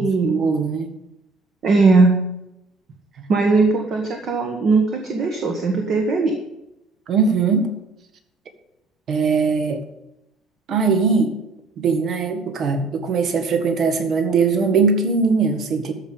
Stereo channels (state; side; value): quieter; left; 3.8 dB